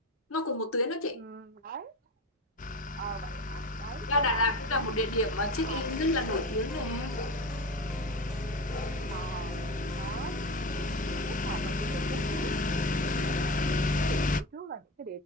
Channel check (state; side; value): normal; both; correlation 0.25